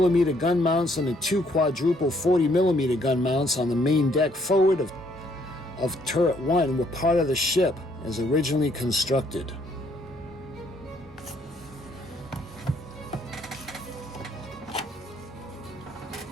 gun mounts and the 2 quadruple 40mm gun mounts on the main deck forward of turret 1 were part of the ship as originally constructed.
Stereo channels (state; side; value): normal; both; correlation 0.67